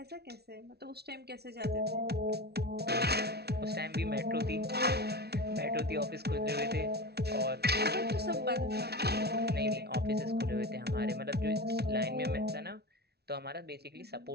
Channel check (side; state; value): left; late; 0.47 ms